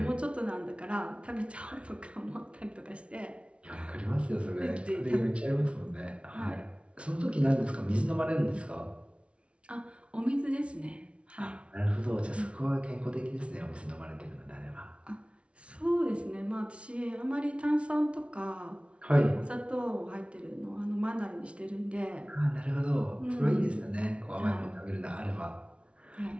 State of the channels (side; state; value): left; late; 0.060 ms